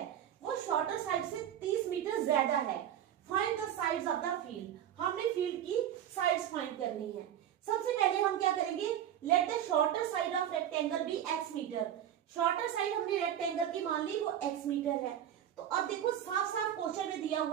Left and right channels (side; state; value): left; quieter; 10.5 dB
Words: वो शॉर्टर साइड से 30 मीटर ज्यादा है, find the sides of the field. हमने फील्ड की साइड्स फाइंड करनी है। सबसे पहले हम क्या करेंगे? Let the shorter side of rectangle be x metre. Shorter side हमने रेक्टेंगल की मान ली, वो x मीटर है। तो अब देखो, साफ साफ क्वेश्चन में दिया